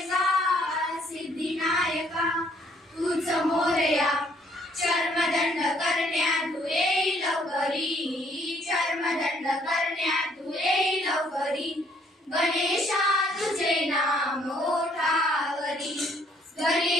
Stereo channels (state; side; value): normal; both; correlation 0.65